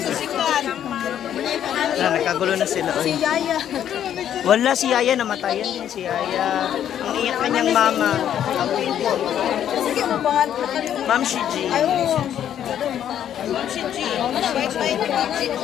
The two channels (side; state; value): right; quieter; 10.1 dB